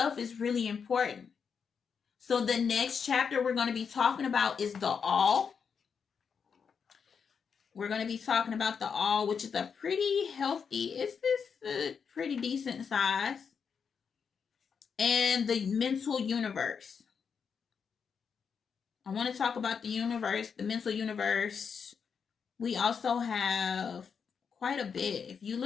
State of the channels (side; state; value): right; quieter; 6.4 dB